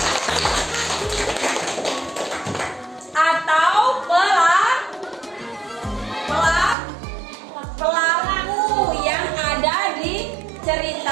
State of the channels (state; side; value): drops out; left; at 6.8 s